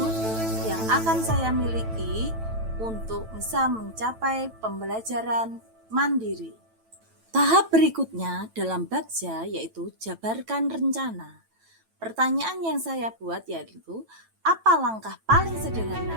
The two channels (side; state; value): left; late; 9.0 ms